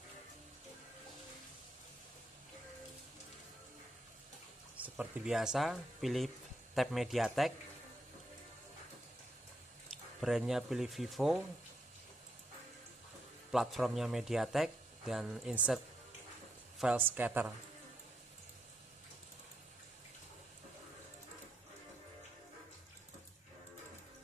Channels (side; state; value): both; normal; correlation 0.79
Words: Seperti biasa, pilih tab MediaTek, brandnya pilih Vivo, platformnya MediaTek, dan insert file scatter.